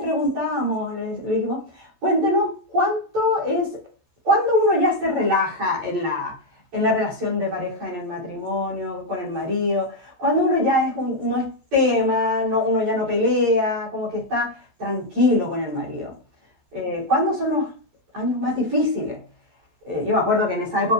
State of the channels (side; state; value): left; late; 14 ms